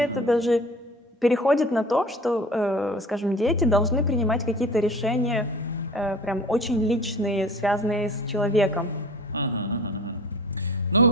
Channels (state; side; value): normal; both; correlation 0.43